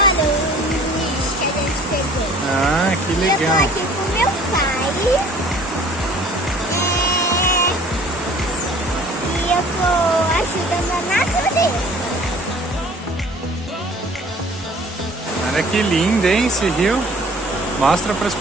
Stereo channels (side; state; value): both; normal; correlation 0.50